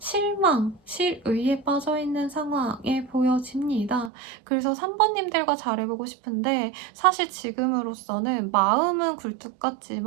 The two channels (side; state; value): left; drops out; at 4.1 s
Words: 실의에 빠져있는 상황에 보여집니다. 그래서 3번님들과 잘해보고 싶은데 사실 지금으로서는 마음은 굴뚝